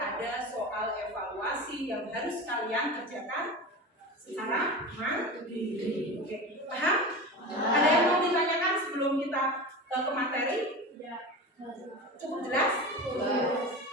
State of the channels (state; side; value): normal; both; correlation 0.28